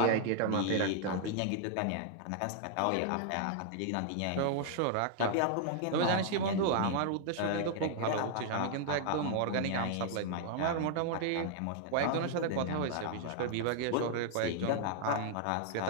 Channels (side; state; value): both; different; correlation 0.00